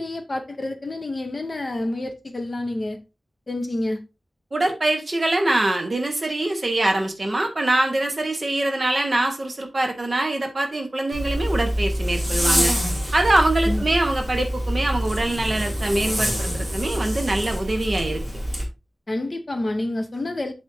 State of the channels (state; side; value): normal; both; correlation 0.96